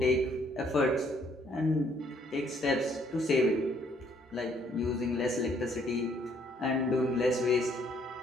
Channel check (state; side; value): normal; both; correlation 0.66